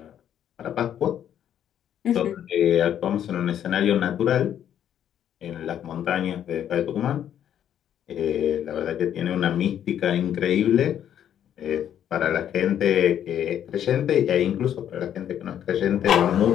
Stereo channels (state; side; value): quieter; right; 10.0 dB